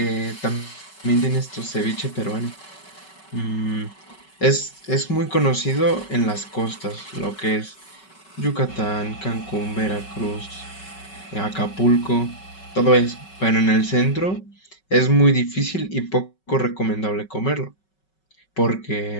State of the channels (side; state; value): right; late; 5.3 ms